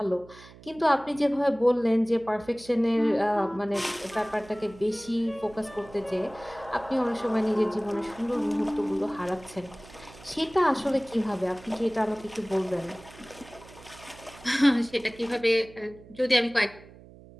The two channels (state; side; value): noise; right; hum, 21 dB below the sound